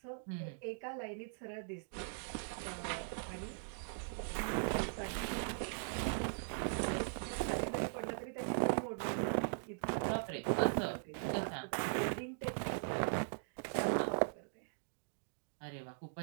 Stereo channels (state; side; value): silent; left; digital silence